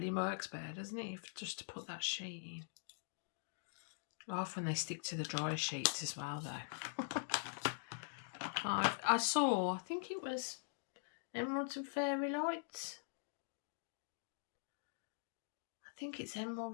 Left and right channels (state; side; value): silent; right; digital silence